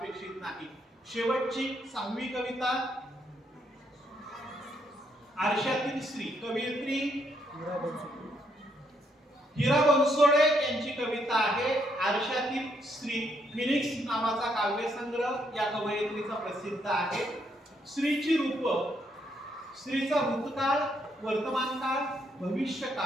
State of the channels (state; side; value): normal; both; correlation 0.74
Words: नाही. शेवटची 6वी कविता आरशातील स्त्री, कवयित्री हिरा बनसोडे यांची कविता आहे. आरशातील स्त्री फिनिक्स नावाचा काव्यसंग्रह या कवयित्रीचा प्रसिद्ध आहे. स्त्रीची रूप, स्त्रीचा भूतकाळ, वर्तमानकाळ,